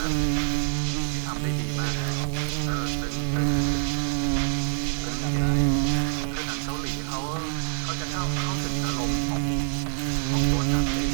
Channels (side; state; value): left; silent; 61 dB below the other